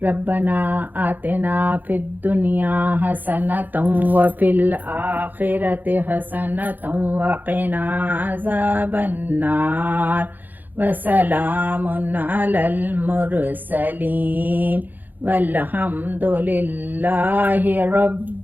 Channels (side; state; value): left; late; 0.086 ms